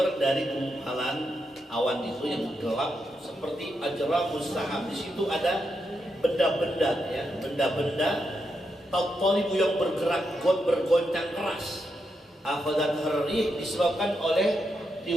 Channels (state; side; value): normal; both; correlation 0.83